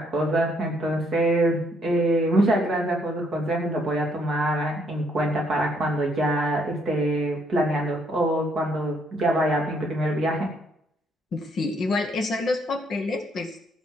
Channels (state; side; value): normal; both; correlation 0.70